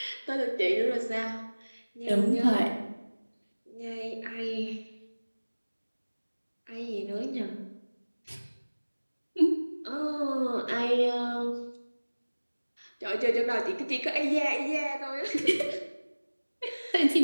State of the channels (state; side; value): inverted; both; correlation -1.00